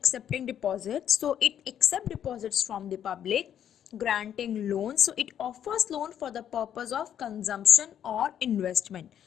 deposits. So it accepts deposits from the public, granting loans. So it offers loan for the purpose of consumption or investment.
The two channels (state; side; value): quieter; right; 9.7 dB